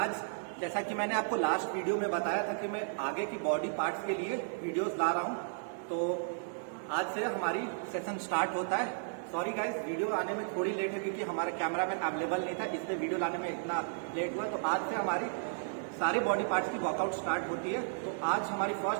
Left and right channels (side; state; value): left; silent; digital silence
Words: जैसा कि मैंने आपको लास्ट वीडियो में बताया था कि मैं आगे की बॉडी पार्ट्स के लिए वीडियोस ला रहा हूं, तो आज से हमारी सेशन स्टार्ट होता है। सॉरी गाइस, वीडियो आने में थोड़ी लेट है क्योंकि हमारा कैमरामैन अवेलेबल नहीं था, इसलिए वीडियो लाने में इतना लेट हुआ। तो आज से हमारी सारी बॉडी पार्ट्स की वर्कआउट स्टार्ट होती है। तो आज हमारी